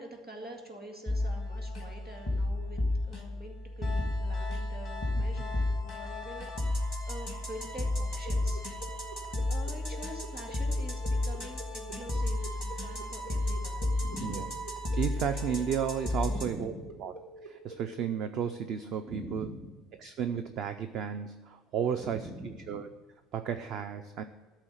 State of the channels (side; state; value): both; normal; correlation 0.72